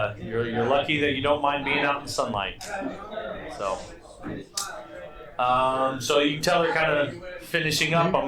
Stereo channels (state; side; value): identical; both; correlation 1.00